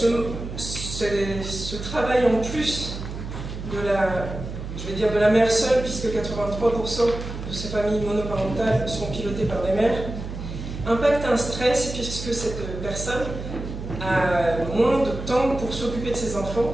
ce travail en plus de la mère seule, puisque 83% de ces familles monoparentales sont pilotées par des mères, impacte un stress puisque cette personne a moins de temps pour s'occuper de ses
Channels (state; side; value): noise; right; hum, 8 dB below the sound